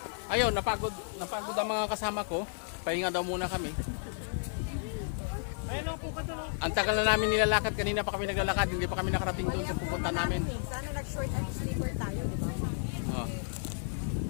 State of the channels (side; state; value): right; silent; 56 dB below the other